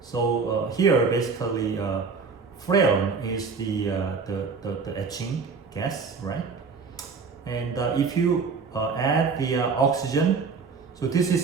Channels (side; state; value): left; quieter; 5.0 dB